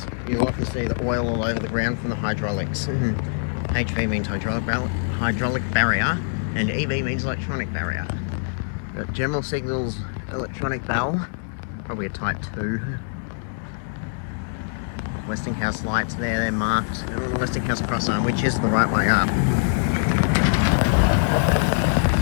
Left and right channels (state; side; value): silent; right; digital silence